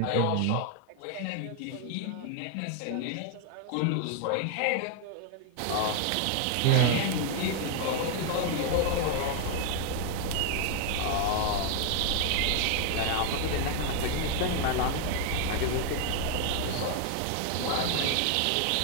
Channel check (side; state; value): both; different; correlation 0.00